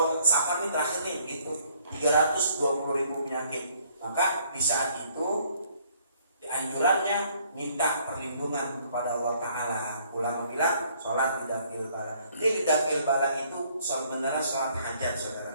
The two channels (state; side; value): inverted; both; correlation -0.63